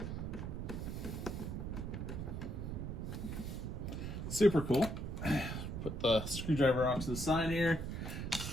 Super cool. Put the screwdriver off to the side here.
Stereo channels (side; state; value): right; noise; rumble, 4 dB below the sound